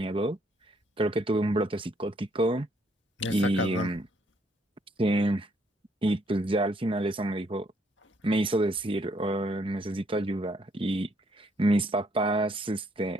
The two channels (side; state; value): both; normal; correlation 0.69